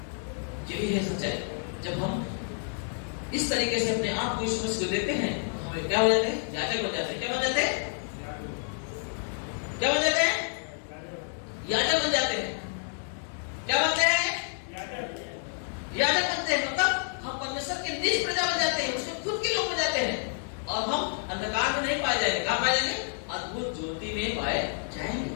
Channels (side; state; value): right; silent; 58 dB below the other